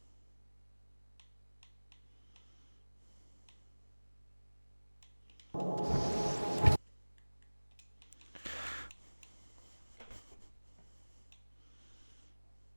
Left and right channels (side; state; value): both; inverted; correlation -1.00